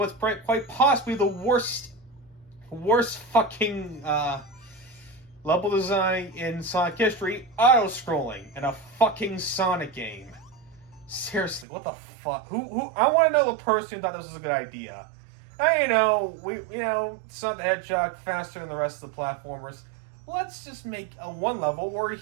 quite possibly the worst fucking level design in Sonic history, auto-scrolling in a fucking Sonic game. Seriously, what the fuck? Who? I want to know the person who thought this was a good idea. Sonic the Hedgehog faster than the rest of the platformers. Let's just make a one level where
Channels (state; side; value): drops out; left; at 11.7 s